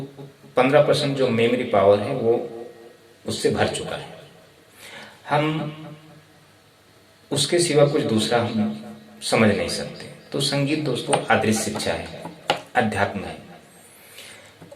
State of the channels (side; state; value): both; identical; correlation 1.00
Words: जो मेमोरी पावर है वो उससे भर चुका है। हम उसके सिवा कुछ दूसरा हम समझ नहीं सकते। तो संगीत दोस्तों अदृश्य शिक्षा है, अध्यात्म है,